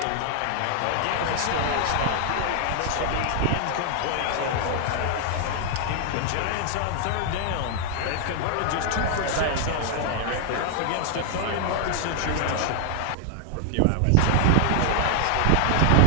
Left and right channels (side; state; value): both; different; correlation 0.00